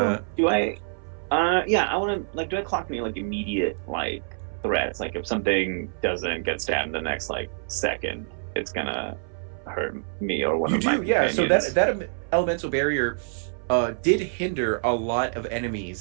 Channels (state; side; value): silent; left; 61 dB below the other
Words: cool. Do I? Yeah, I want to do I clock any like immediate like threats? Like if something doesn't get stabbed the next like second, it's gonna hurt me or one You of my do, yeah. So companions. that elemental barrier did hinder a lot of